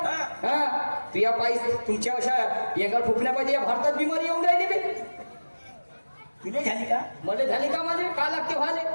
हा तू या पायी तुमच्या अशा एका फुकण्या पाहिजे या भारतात बिमारी येऊन राहिली बे तुझे झाली का? मला झाली का माझे का लागते व्हाले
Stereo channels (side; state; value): both; inverted; correlation -1.00